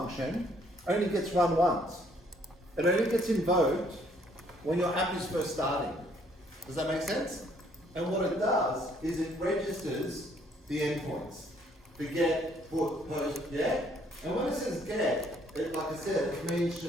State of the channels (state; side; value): normal; both; correlation 0.65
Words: only gets run once. It only gets invoked when your app is first starting. Does that make sense? And what it does is it registers the endpoints. The get, put, post, yeah? And when it says get, it, like I said, it means